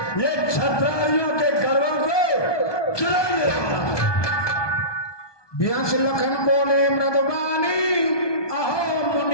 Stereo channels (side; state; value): right; late; 1.2 ms